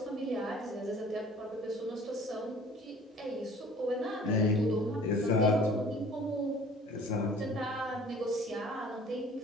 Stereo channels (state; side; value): normal; both; correlation 0.50